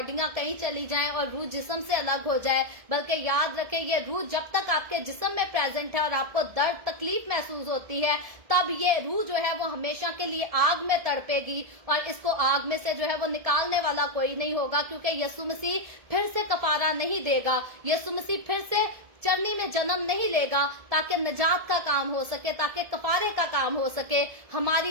कहीं चली जाएं और रूह जिस्म से अलग हो जाए, बल्कि याद रखें ये रूह जब तक आपके जिस्म में प्रेजेंट है और आपको दर्द तकलीफ महसूस होती है, तब ये रूह जो है वो हमेशा के लिए आग में तड़पेगी, और इसको आग में से जो है वो निकालने वाला कोई नहीं होगा, क्योंकि यीशु मसीह फिर से कफारा नहीं देगा, यीशु मसीह फिर से चरनी में जन्म नहीं लेगा ताकि नजात का काम हो सके, ताकि कफारे का काम हो सके।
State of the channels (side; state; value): left; late; 1.7 ms